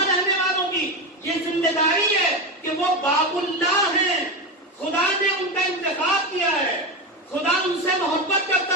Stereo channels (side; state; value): both; normal; correlation 0.16